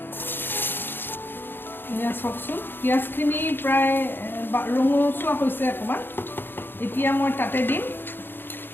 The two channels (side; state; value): right; late; 0.10 ms